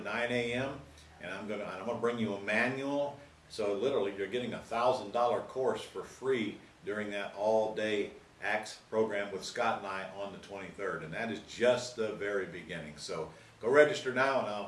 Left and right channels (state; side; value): identical; both; correlation 1.00